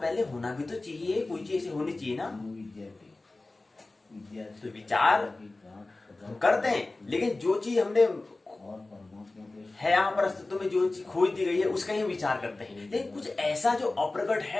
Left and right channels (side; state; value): right; quieter; 3.1 dB